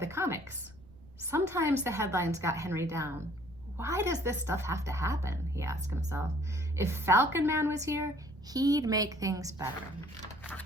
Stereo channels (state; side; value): noise; right; rumble, 22 dB below the sound